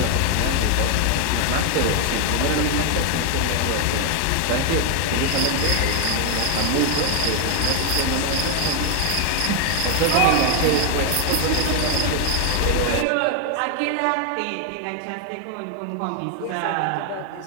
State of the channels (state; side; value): different; both; correlation 0.00